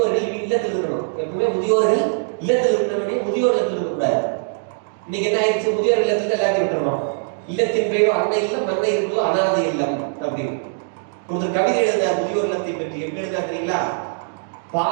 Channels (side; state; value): left; silent; digital silence